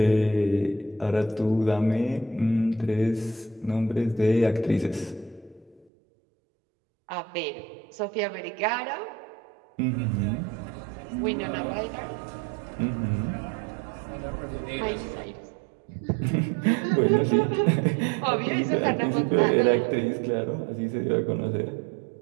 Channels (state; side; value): drops out; left; at 5.9 s